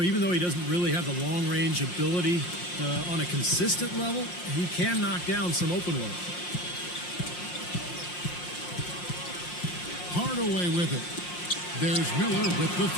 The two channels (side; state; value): right; late; 5.6 ms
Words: even though he doesn't really have the long-range ability on a consistent level, he can knock down some open ones. Hardaway with it. There's Miller with the